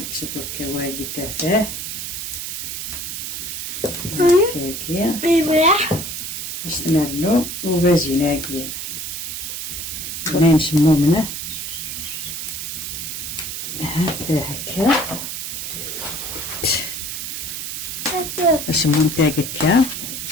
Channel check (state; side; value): noise; right; hiss, 5 dB below the sound